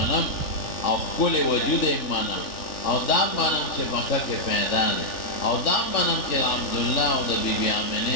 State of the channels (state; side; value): late; right; 3.4 ms